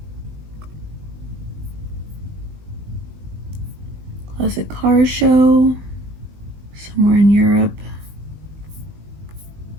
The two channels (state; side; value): late; left; 19 ms